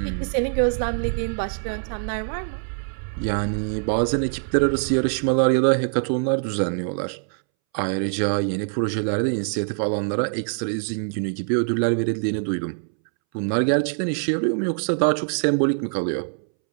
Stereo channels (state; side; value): silent; left; 63 dB below the other